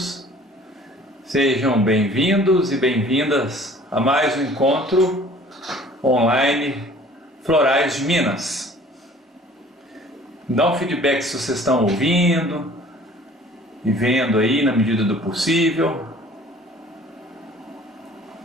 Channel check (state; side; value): normal; both; correlation 0.51